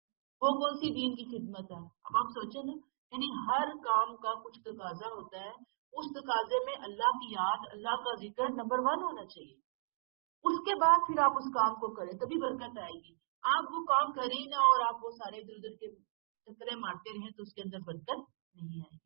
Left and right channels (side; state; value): left; silent; digital silence